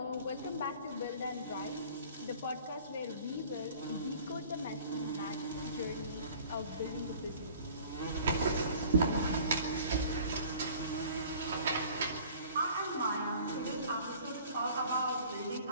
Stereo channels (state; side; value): inverted; both; correlation -0.49